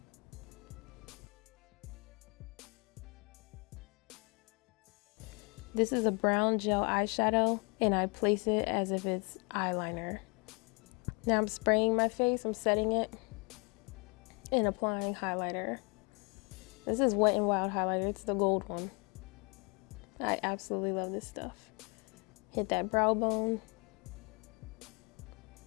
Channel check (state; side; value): quieter; right; 32.3 dB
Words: This is a brown gel eyeshadow and I place it as if it's eyeliner. Now I'm spraying my face, I'm setting it and applying highlighter. This is Wet n Wild highlighter, it's the gold one. I absolutely love this stuff. Hit that brow bone.